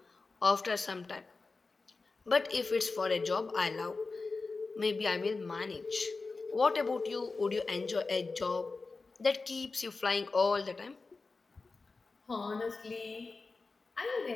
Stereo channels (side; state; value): right; quieter; 3.9 dB